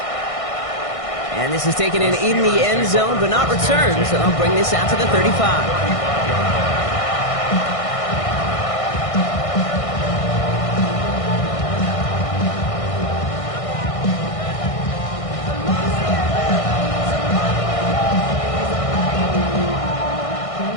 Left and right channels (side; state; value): right; late; 1.6 ms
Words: And this is taken in the end zone, but not returned, so they'll bring this out to the 35.